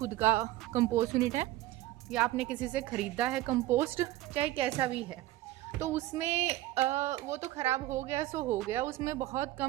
का कंपोस्ट यूनिट है या आपने किसी से ख़रीदा है कंपोस्ट, चाहे कैसा भी है, तो उसमें वो तो ख़राब हो गया सो हो गया, उसमें बहुत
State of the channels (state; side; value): quieter; left; 16.1 dB